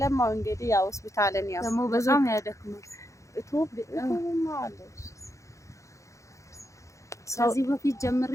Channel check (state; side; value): late; right; 0.15 ms